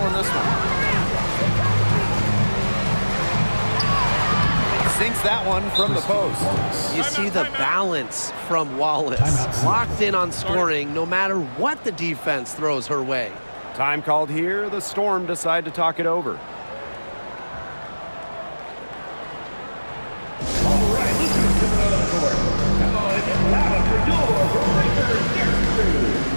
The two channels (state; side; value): inverted; both; correlation -1.00